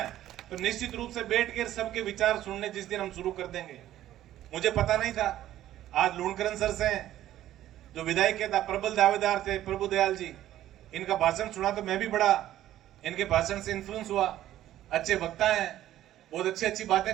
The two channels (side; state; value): left; quieter; 13.1 dB